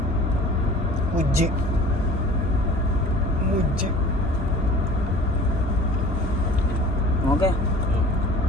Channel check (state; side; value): normal; both; correlation 0.45